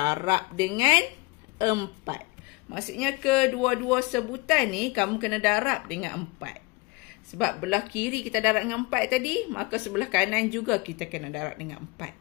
dengan 4. Maksudnya, kedua-dua sebutan ni kamu kena darab dengan 4. Sebab belah kiri kita darab dengan 4 tadi, maka sebelah kanan juga kita kena darab dengan 4.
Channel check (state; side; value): quieter; right; 25.3 dB